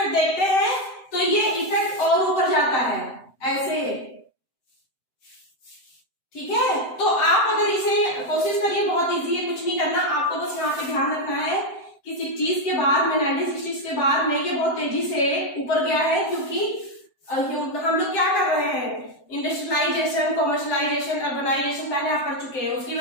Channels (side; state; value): right; late; 7.8 ms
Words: देखते हैं तो ये इफेक्ट और ऊपर जाता है ऐसे, ठीक है। तो आप अगर इसे कोशिश करिए, बहुत इजी है, कुछ नहीं करना आपको, बस यहाँ पे ध्यान रखना है कि 60s के बाद में, 1960s के बाद में ये बहुत तेजी से ऊपर गया है, क्योंकि हम लोग क्या कर रहे हैं, इंडस्ट्रियलाइजेशन, कॉमर्शलाइजेशन, अर्बनाइजेशन पहले आप पढ़ चुके हैं, उसकी